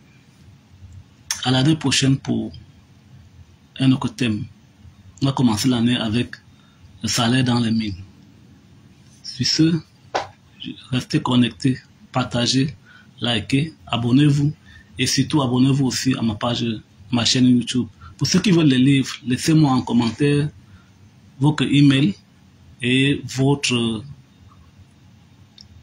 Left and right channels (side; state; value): both; identical; correlation 1.00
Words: À l'année prochaine pour un autre thème. On va commencer l'année avec le salaire dans les mines. Sur ce, restez connectés, partagez, likez, abonnez-vous et surtout abonnez-vous aussi à ma chaîne YouTube. Pour ceux qui veulent les livres, laissez-moi en commentaire votre email et votre